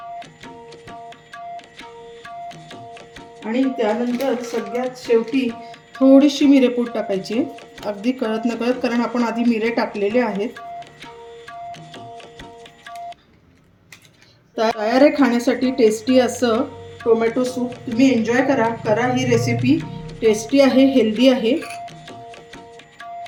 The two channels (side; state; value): both; identical; correlation 1.00